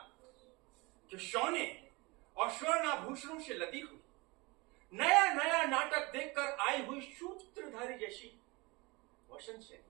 कि सोने और स्वर्णाभूषणों से लदी हुई नया नया नाटक देखकर आई हुई सूत्रधारी जैसी वसंत सेन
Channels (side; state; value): left; quieter; 25.2 dB